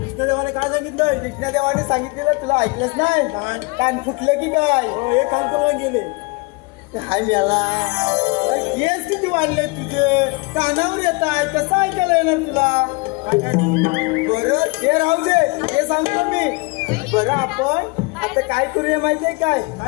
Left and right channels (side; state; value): right; quieter; 27.6 dB